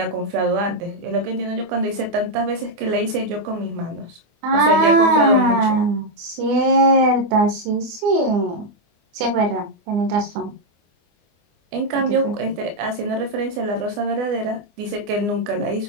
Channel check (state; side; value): late; left; 24 ms